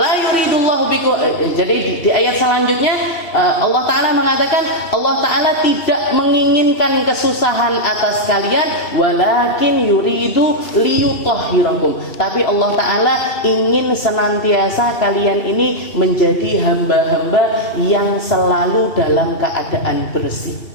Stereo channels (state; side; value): late; right; 2.7 ms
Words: yuridullahu bikum. Jadi di ayat selanjutnya Allah Ta'ala mengatakan Allah Ta'ala tidak menginginkan kesusahan atas kalian, walakin yuridu liyutahhirakum, tapi Allah Ta'ala ingin senantiasa kalian ini menjadi hamba-hamba yang selalu dalam keadaan bersih.